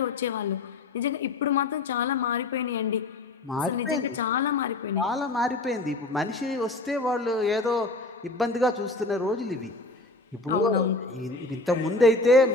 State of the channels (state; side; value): quieter; right; 3.0 dB